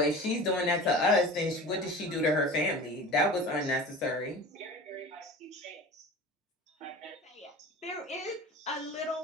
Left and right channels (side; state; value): both; normal; correlation 0.36